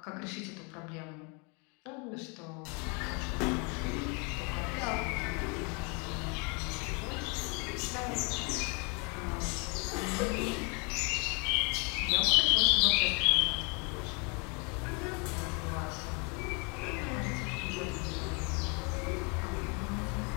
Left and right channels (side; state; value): right; quieter; 33.0 dB